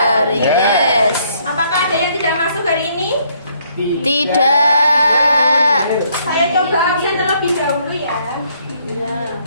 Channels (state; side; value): inverted; both; correlation -0.68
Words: Yes. Apakah ada yang tidak masuk hari ini? Tidak. Saya coba absen terlebih dahulu ya.